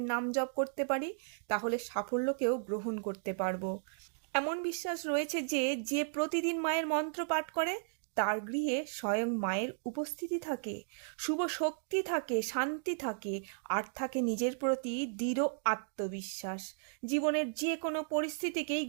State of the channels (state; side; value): silent; left; digital silence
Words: নাম জপ করতে পারি, তাহলে সাফল্যকেও গ্রহণ করতে পারবো। এমন বিশ্বাস রয়েছে যে যে প্রতিদিন মায়ের মন্ত্র পাঠ করে তার গৃহে স্বয়ং মায়ের উপস্থিতি থাকে, শুভ শক্তি থাকে, শান্তি থাকে, আর থাকে নিজের প্রতি দৃঢ় আত্মবিশ্বাস। জীবনের যে কোনো পরিস্থিতিকেই